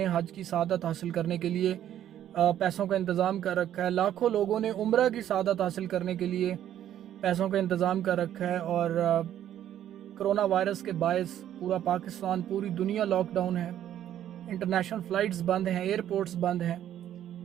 हज की सआदत हासिल करने के लिए पैसों का इंतज़ाम कर रखा है। लाखों लोगों ने उम्रा की सआदत हासिल करने के लिए पैसों का इंतज़ाम कर रखा है। और कोरोना वायरस के बायस पूरा पाकिस्तान, पूरी दुनिया लॉकडाउन है। इंटरनेशनल फ़्लाइट्स बंद हैं, एयरपोर्ट्स बंद हैं।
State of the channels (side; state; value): left; quieter; 11.2 dB